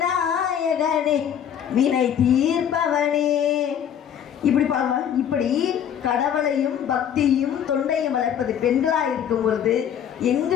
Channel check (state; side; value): quieter; right; 9.1 dB